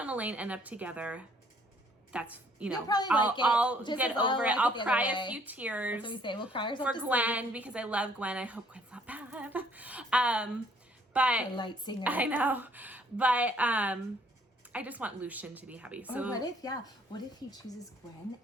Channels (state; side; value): normal; both; correlation 0.62